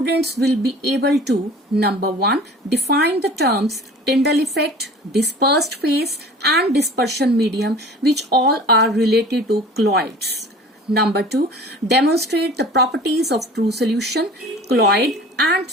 will be able to number 1, define the terms Tyndall effect, dispersed phase and dispersion medium, which all are related to colloids. Number 2, demonstrate the properties of true solution, colloid and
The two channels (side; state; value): both; normal; correlation 0.43